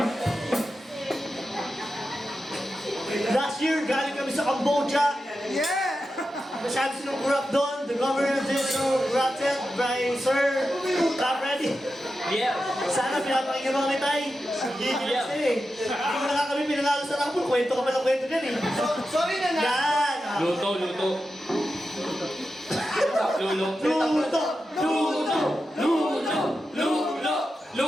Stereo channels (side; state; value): both; normal; correlation 0.90